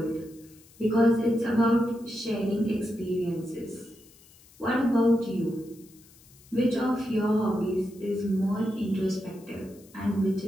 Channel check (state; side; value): noise; left; hiss, 26 dB below the sound